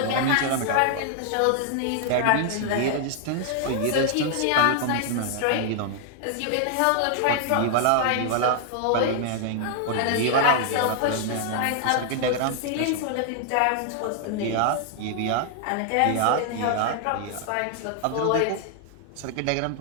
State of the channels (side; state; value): both; different; correlation 0.00